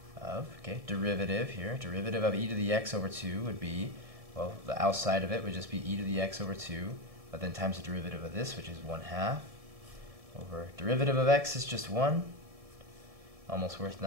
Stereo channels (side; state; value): left; late; 1.7 ms